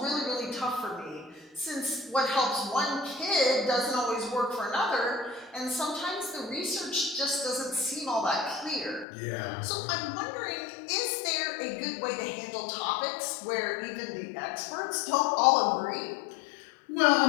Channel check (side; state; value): right; drops out; at 9.1 s